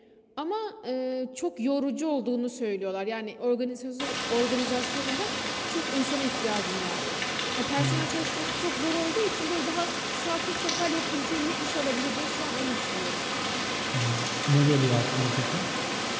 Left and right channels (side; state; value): both; identical; correlation 1.00